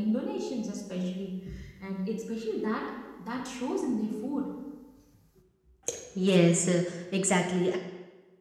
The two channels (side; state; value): both; identical; correlation 1.00